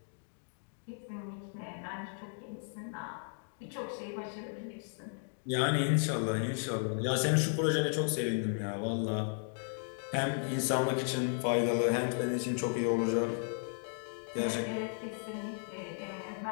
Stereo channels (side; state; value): right; silent; digital silence